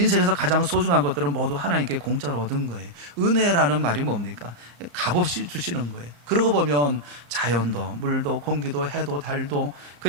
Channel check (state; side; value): late; left; 34 ms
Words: 가장 소중한 것들은 모두 하나님께 공짜로 얻은 거예요. 은혜라는 말이 뭡니까? 값없이 주시는 거예요. 그러고 보면 자연도, 물도, 공기도, 해도, 달도,